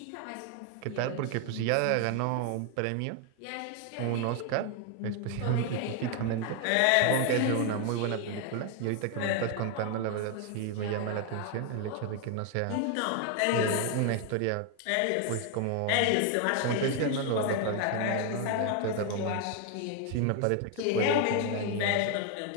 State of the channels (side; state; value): both; different; correlation 0.01